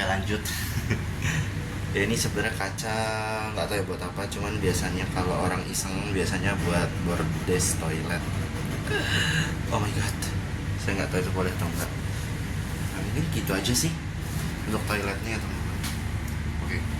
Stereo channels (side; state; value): both; identical; correlation 1.00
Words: Ya ini sebenarnya kaca, nggak tahu ya buat apa. Cuman biasanya kalau orang iseng biasanya buat bordes toilet. Oh my god, saya nggak tahu itu boleh atau enggak. Nah, mungkin gitu aja sih untuk toiletnya teman. Oke.